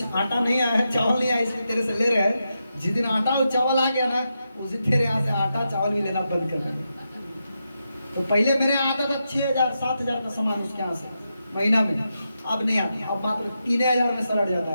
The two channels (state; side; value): inverted; both; correlation -0.86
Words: आटा नहीं आया है, चावल नहीं आया, इसलिए तेरे से ले रहे हैं। जिस दिन आटा और चावल आ गया ना, उस दिन तेरे यहाँ से आटा चावल भी लेना बंद कर देंगे। तो पहले मेरे यहाँ आता था 6000-7000 का सामान उसके यहाँ से महीना में, अब नहीं आता। अब मात्र 3000 में सलट जाता